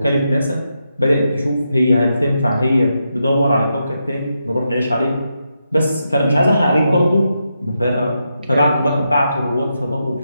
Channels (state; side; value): inverted; both; correlation -0.84